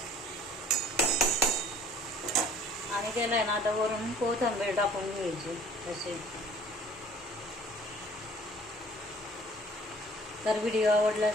आणि त्याला आहे ना आता वरून कोथिंबीर टाकून घ्यायची असे. तर व्हिडिओ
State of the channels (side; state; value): both; normal; correlation 0.53